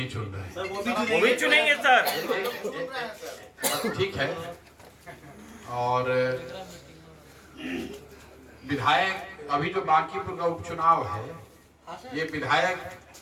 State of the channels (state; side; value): identical; both; correlation 1.00